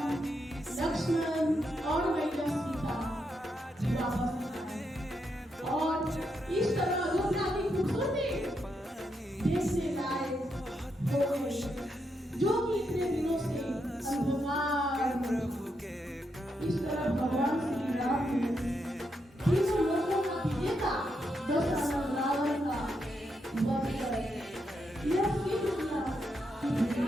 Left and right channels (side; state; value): both; normal; correlation 0.82